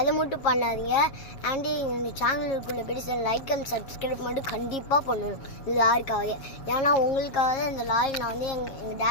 மட்டும் பண்ணாதீங்க. அண்டு எங்கள் சேனலுக்குள்ளே போய்ட்டு லைக் அண்ட் சப்ஸ்கிரைப் மட்டும் கண்டிப்பாக பண்ணணும் இந்த லாரிக்காக. ஏன்னா உங்களுக்காக தான் இந்த லாரி நான் வந்து எங்கள்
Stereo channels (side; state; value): right; late; 7.4 ms